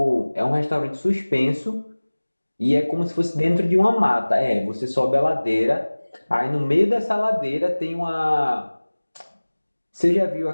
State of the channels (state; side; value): inverted; both; correlation -1.00